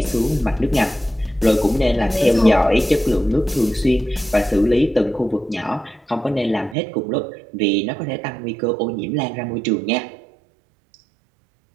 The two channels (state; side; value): drops out; left; at 6.8 s